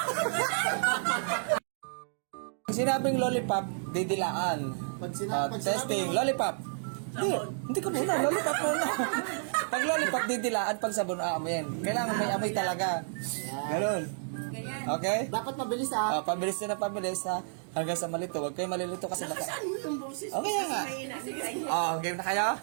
Sinabing lollipop, didilaan. Pag sinabi Testing, lollipop. Hindi ka muna, lollipop muna. Pag lollipop, didilaan, pag sabon, aamoyin. Kailangan may amoy talaga. Ganun. Ganyan. Okay? Dapat mabilis ha. Pabilis na pabilis ha. Hanggang sa malito. Huwag kayo malilito kasi Saan mo yung boses? Okay nga. Game na kayo?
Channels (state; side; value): silent; left; digital silence